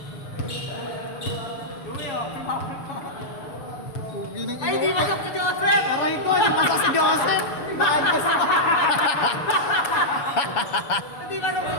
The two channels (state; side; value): late; right; 6.8 ms